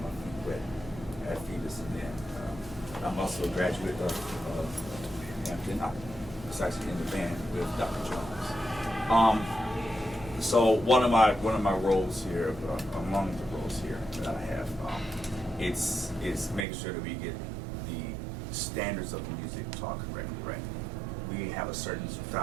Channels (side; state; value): left; drops out; at 16.7 s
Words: my feet wet at Phoebus. And then I'm also a graduate of Hampton. I was actually in the band with Dr. Jones. So one of my roles here, among the roles here that I have, it's making sure that we get the standards of the music taught correctly, right? We have a certain